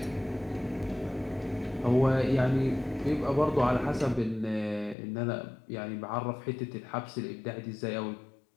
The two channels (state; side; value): drops out; right; at 5.0 s